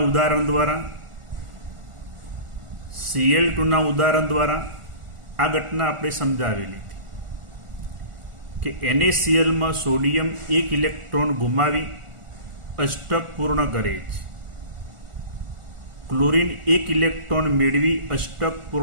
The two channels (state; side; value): late; left; 1.4 ms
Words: ઉદાહરણ દ્વારા, Cl2ના ઉદાહરણ દ્વારા આ ઘટના આપણે સમજાવેલી હતી કે NaClમાં સોડિયમ એક ઇલેક્ટ્રોન ગુમાવી અષ્ટક પૂર્ણ કરે છે. ક્લોરીન એક ઇલેક્ટ્રોન મેળવી અષ્ટક